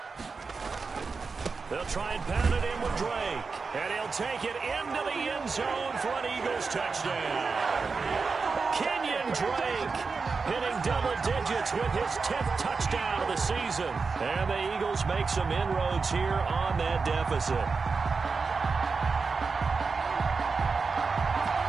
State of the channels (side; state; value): left; quieter; 4.6 dB